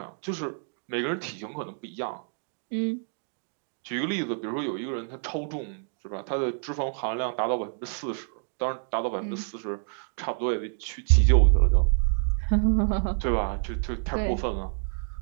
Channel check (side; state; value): left; silent; digital silence